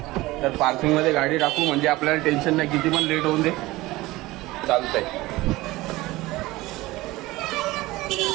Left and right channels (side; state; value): left; quieter; 19.4 dB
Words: तर पार्किंगमध्ये गाडी टाकू म्हणजे आपल्याला टेन्शन नाही. किती पण लेट होऊन दे चालतंय.